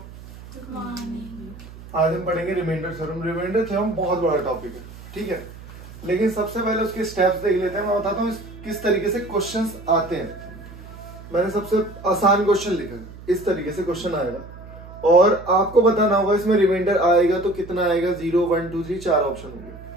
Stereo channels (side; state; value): right; noise; hum, 16 dB below the sound